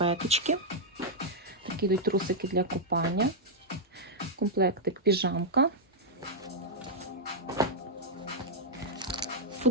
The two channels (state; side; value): normal; both; correlation -0.05